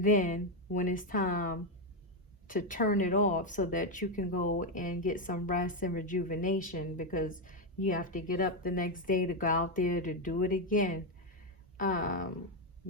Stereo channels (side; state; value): both; normal; correlation 0.05